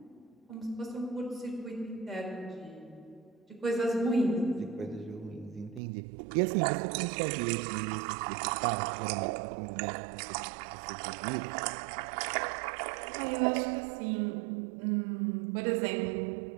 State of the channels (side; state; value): left; drops out; at 5.8 s